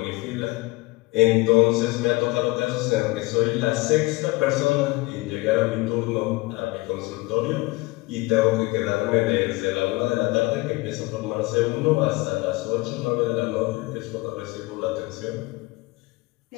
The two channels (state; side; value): quieter; right; 22.5 dB